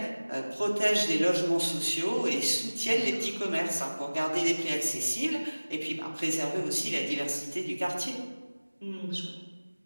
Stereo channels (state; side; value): inverted; both; correlation -1.00